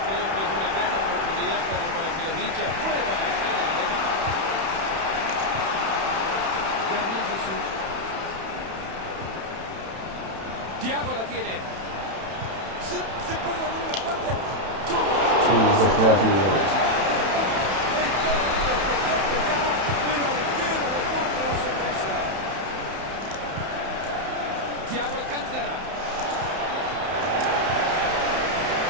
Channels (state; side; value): late; left; 31 ms